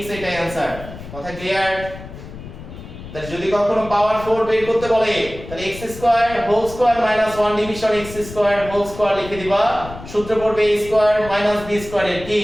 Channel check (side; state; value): left; noise; rumble, 14 dB below the sound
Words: এটাই आंसर। কথা ক্লিয়ার? তাহলে যদি কখনো পাওয়ার 4 বের করতে বলে তাহলে x square whole square minus 1 division x square whole square লিখে দিবা। সূত্র পড়বে a square minus b square এর কি